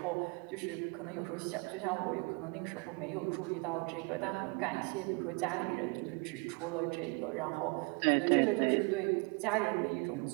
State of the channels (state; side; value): quieter; left; 29.7 dB